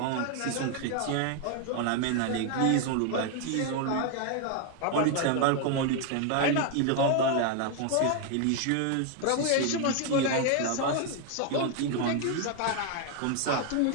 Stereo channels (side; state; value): both; different; correlation 0.00